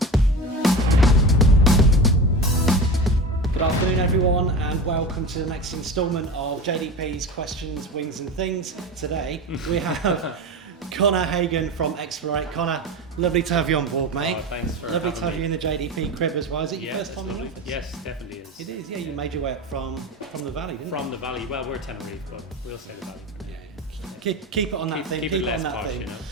Good afternoon, everyone, and welcome to the next instalment of JDP's Questions, Wings and Things. Today we have Conor Hagan from Explorate. Conor, lovely to have you on board, mate. Oh, thanks for Lovely to have having you in the JDP crib as well. Is it your first time in the office? Yes, definitely is. It is, yeah. You made your way up from the valley, didn't you? From the valley. Well, we're Tenerife, but we'll say the valley. Keep it on that thing. Keep Keep it it on less that posh, thing. you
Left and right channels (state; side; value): normal; both; correlation 0.28